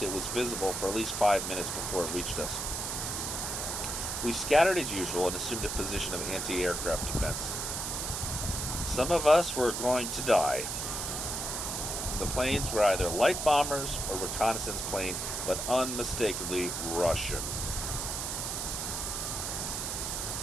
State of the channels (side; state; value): right; noise; hiss, 3 dB below the sound